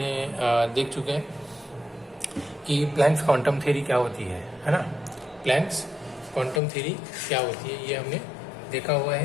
देख चुके हैं कि प्लैंक्स क्वांटम थ्योरी क्या होती है ना। प्लैंक्स क्वांटम थ्योरी क्या होती है, ये हमने देखा हुआ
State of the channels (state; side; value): drops out; right; at 6.6 s